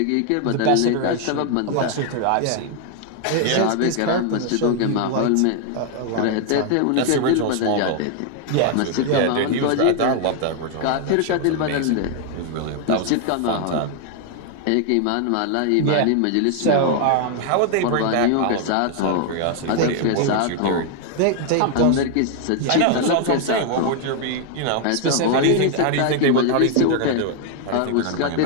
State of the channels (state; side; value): different; both; correlation 0.00